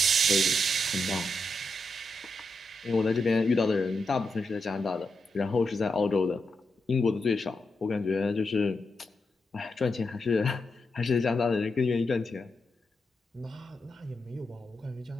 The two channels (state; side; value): normal; both; correlation 0.85